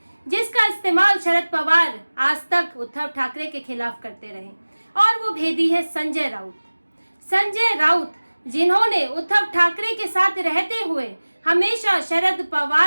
जिसका इस्तेमाल शरद पवार आज तक उद्धव ठाकरे के खिलाफ करते रहे। और वो भेदी है संजय राउत। संजय राउत जिन्होंने उद्धव ठाकरे के साथ रहते हुए हमेशा शरद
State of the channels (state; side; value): inverted; both; correlation -1.00